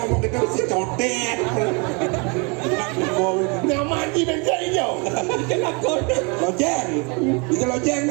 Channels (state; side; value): quieter; left; 32.2 dB